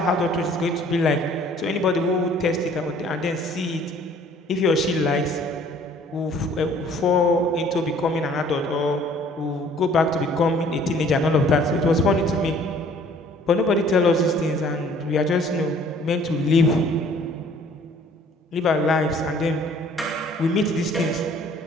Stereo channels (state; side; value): normal; both; correlation 0.56